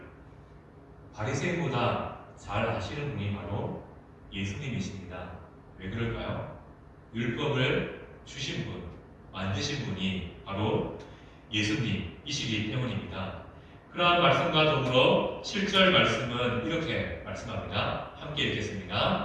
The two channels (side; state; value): both; identical; correlation 1.00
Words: 바리새인보다 잘 아시는 분이 바로 예수님이십니다. 왜 그럴까요? 율법을 주신 분, 만드신 분이 바로 예수님이시기 때문입니다. 그러한 말씀과 더불어 7절 말씀은 이렇게 말씀합니다. 함께